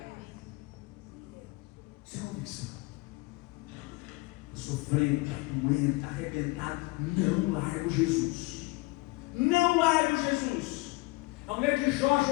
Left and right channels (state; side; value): quieter; right; 24.1 dB